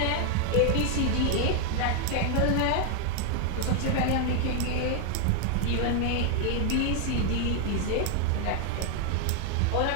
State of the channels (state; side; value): different; both; correlation 0.00